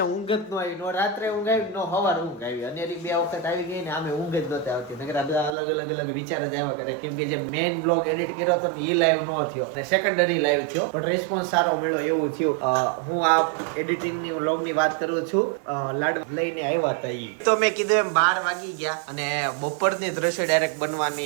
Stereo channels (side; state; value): left; drops out; at 5.6 s